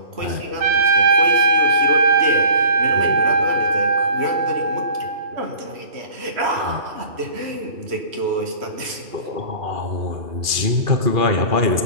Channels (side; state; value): left; late; 2.4 ms